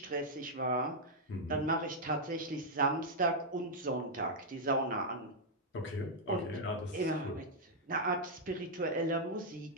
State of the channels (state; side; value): normal; both; correlation -0.04